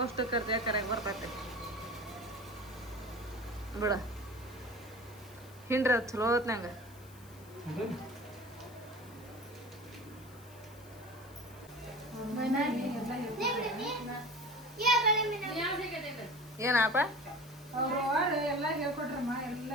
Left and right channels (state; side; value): noise; left; hiss, 23 dB below the sound